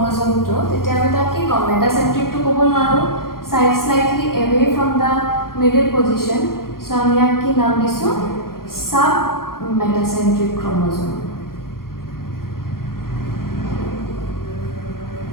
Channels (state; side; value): late; right; 0.92 ms